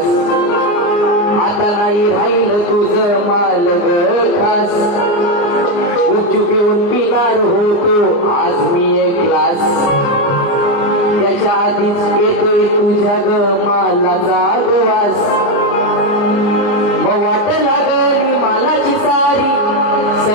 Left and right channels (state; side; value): late; right; 29 ms